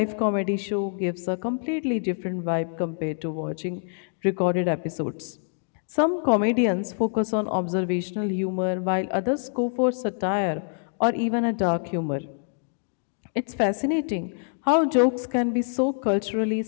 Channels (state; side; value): silent; right; 61 dB below the other